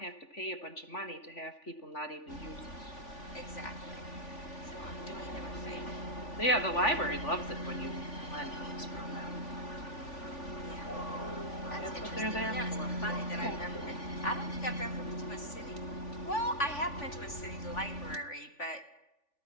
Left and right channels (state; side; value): late; right; 3.5 ms